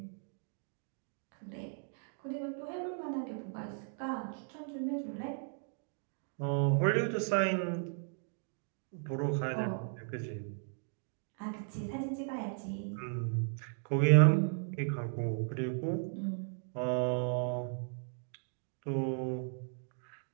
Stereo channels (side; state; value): left; silent; 54 dB below the other